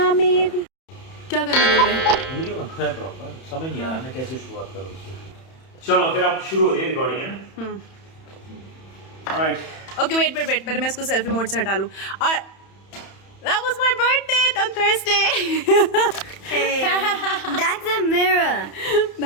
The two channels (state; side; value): late; right; 31 ms